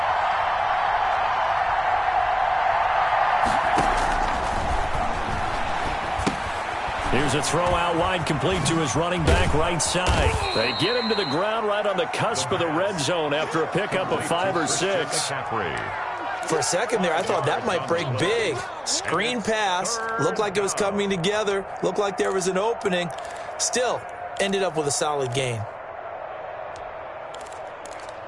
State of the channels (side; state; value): both; identical; correlation 1.00